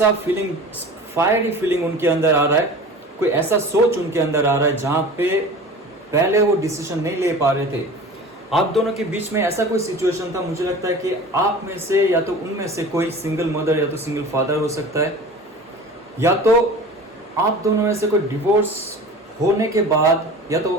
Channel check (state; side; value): normal; both; correlation 0.38